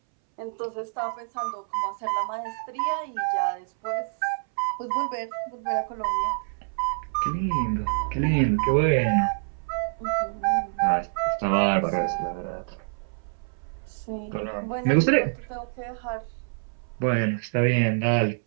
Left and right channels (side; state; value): left; silent; 60 dB below the other